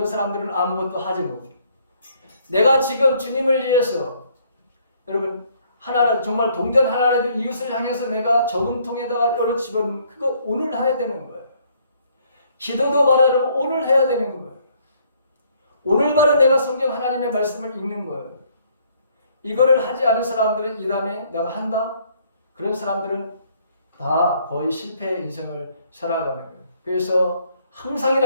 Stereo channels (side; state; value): both; inverted; correlation -0.65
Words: 사람들은 아무것도 하지 못해요. 내가 지금 주님을 위해서 여러분 하나님 정말 동전 하나라도 이웃을 향해서 내가 저금통에다가 열어 집어넣는 그거 오늘 해야 되는 거예요. 기도도 바로 여러분 오늘 해야 되는 거예요. 오늘 바로 내가 성경 하나님의 말씀을 읽는 거예요. 이거를 하지 않은 사람들은 이 다음에 내가 한다? 그런 사람들은 다 거의 실패의 인생을 살아가는 거예요. 그래서